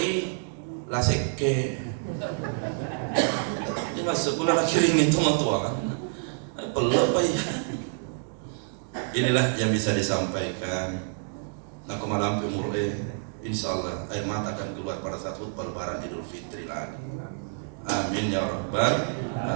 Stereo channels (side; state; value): left; silent; digital silence